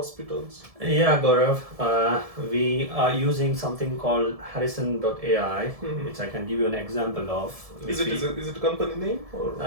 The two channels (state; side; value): late; left; 1.7 ms